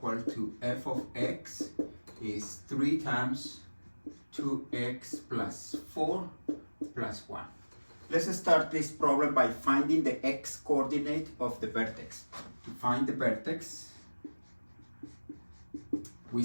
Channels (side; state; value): both; inverted; correlation -1.00